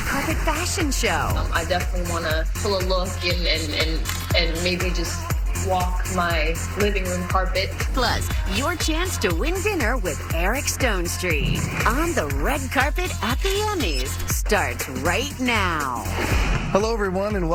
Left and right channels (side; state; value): both; identical; correlation 1.00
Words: carpet fashion show? I definitely want to pull a look and maybe just walk my living room carpet. Plus, your chance to win dinner with Eric Stonestreet on the red carpet at the Emmys starts right now. Hello, everyone, and